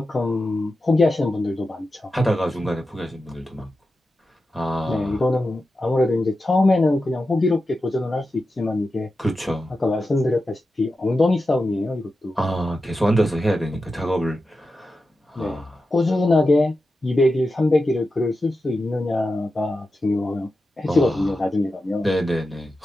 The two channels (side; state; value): both; normal; correlation 0.91